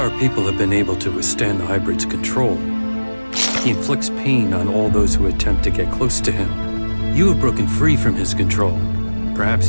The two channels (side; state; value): both; inverted; correlation -1.00